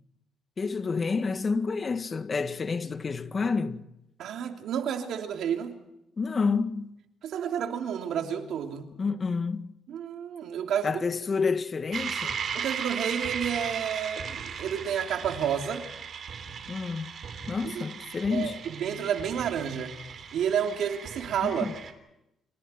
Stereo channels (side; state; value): both; normal; correlation 0.73